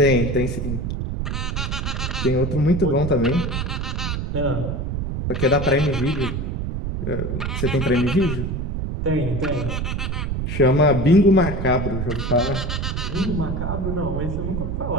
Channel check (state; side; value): noise; right; rumble, 2 dB below the sound